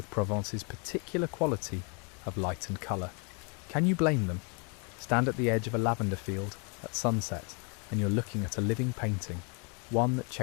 Provence's particular quality of light and colour. Can you blame them? Stand at the edge of a lavender field at sunset and you're looking at a living painting, one that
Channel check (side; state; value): right; quieter; 35.7 dB